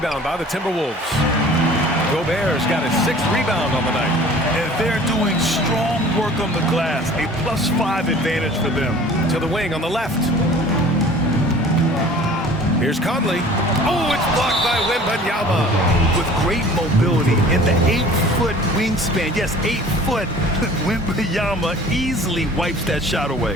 by the Timberwolves. Gobert's got his 6th rebound on the night. And they're doing strong work on the glass. A +5 advantage for them. To the wing on the left. Here's Conley. Oh, it's blocked by Wembanyama. With great mobility and the 8-foot wingspan. Yes, 8 foot. Wembanyama easily wipes that shot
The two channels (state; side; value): normal; both; correlation 0.47